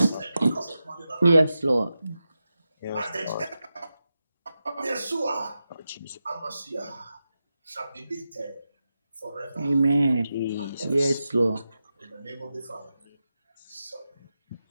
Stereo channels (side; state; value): both; inverted; correlation -0.91